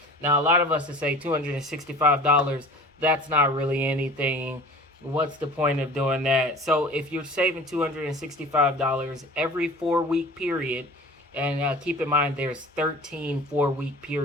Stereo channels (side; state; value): both; normal; correlation 0.42